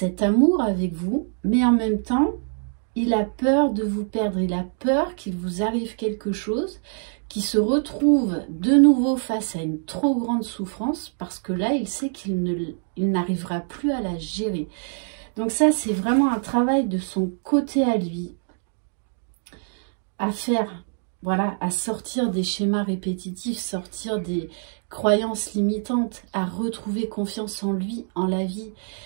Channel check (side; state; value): left; silent; 62 dB below the other